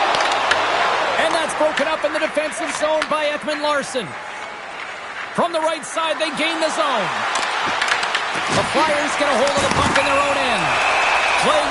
And that's broken up in the defensive zone by Ekman-Larsson. From the right side, they gain the zone. The Flyers get a hold of the puck in their own end. Play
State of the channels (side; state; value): both; identical; correlation 1.00